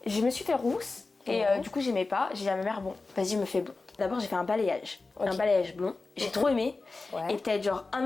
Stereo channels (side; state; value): right; quieter; 3.7 dB